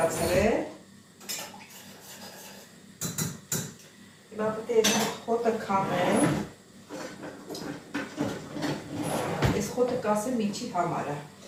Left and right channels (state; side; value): identical; both; correlation 1.00